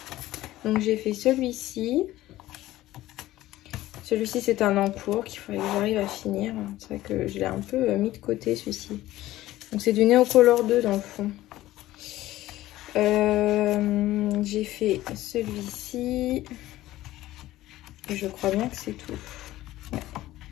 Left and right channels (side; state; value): right; quieter; 15.7 dB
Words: Donc j'ai fait celui-ci. Celui-ci, c'est un encours qu'il faudrait que j'arrive à finir. C'est vrai que je l'ai un peu mis de côté, celui-ci. Donc c'est du Neocolor 2 dans le fond. J'ai fait celui-ci. Et je crois bien que c'est tout. Ouais.